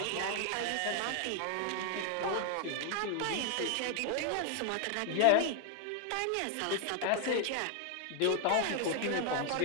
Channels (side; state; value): both; different; correlation 0.00